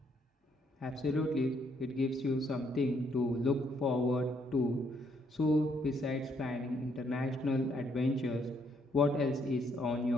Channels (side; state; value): both; normal; correlation 0.71